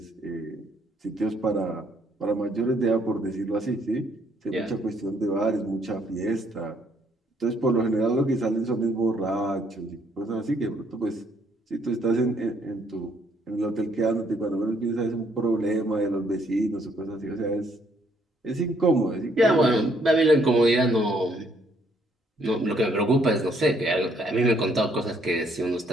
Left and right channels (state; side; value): normal; both; correlation 0.68